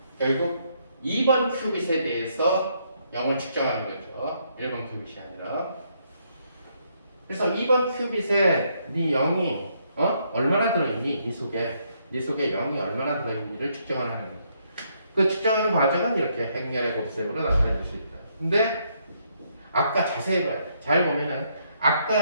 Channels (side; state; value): both; inverted; correlation -0.73